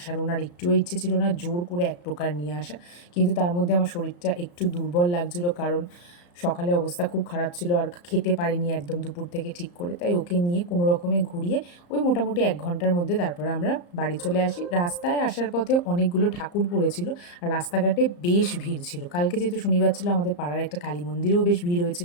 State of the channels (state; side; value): late; right; 34 ms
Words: ওনার একটুও ইচ্ছে ছিল না, জোর করে এক প্রকার নিয়ে আসা। কিন্তু তার মধ্যে আমার শরীরটা একটু দুর্বল লাগছিল, কারণ সকালে অবস্থা খুব খারাপ ছিল আর খেতে পারিনি একদম দুপুর থেকে ঠিক করে। তাই ওকে নিয়ে কোনো রকমে ঘুরিয়ে ওই মোটামুটি 1 ঘন্টার মধ্যে তারপরে আমরা বাড়ি চলে আসি। রাস্তায় আসার পথে অনেকগুলো ঠাকুর পড়েছিল আর রাস্তাঘাটে বেশ ভিড় ছিল। কালকে যেহেতু শনিবার ছিল, আমাদের পাড়ার একটা কালী মন্দিরেও বেশ ভিড়